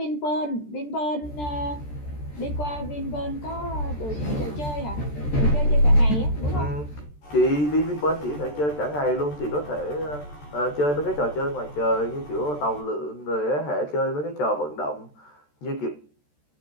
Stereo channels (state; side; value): late; right; 14 ms